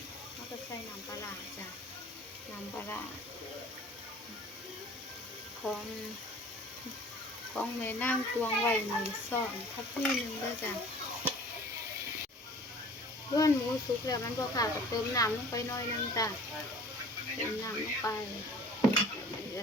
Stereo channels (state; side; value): normal; both; correlation 0.47